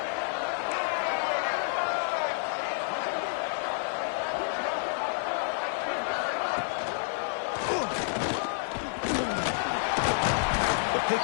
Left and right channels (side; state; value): right; silent; 58 dB below the other